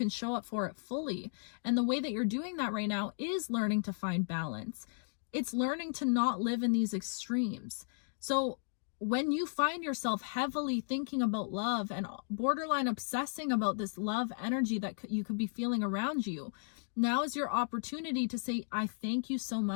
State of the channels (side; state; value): right; silent; digital silence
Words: show up for it fully. And the way that you're doing that right now is learning to find balance. It's learning to not live in these extremes. So when you find yourself heavily thinking about love and borderline obsessing about this love energy that you could be feeling around you, now is your opportunity to say, I thank you so